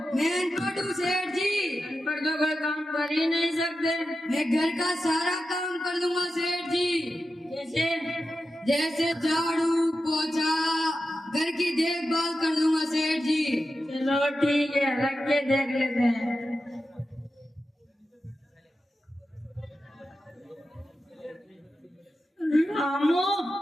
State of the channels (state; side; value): normal; both; correlation 0.91